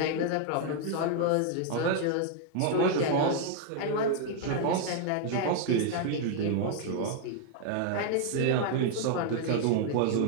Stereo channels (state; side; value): different; both; correlation 0.00